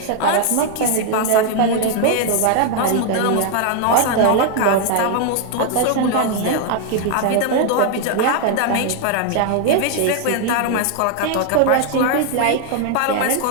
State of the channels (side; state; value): both; different; correlation 0.00